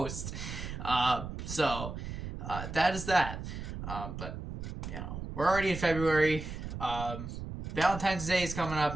So that is that. But, you know, we're already in February. Valentine's Day is coming up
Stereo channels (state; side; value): noise; right; rumble, 7 dB below the sound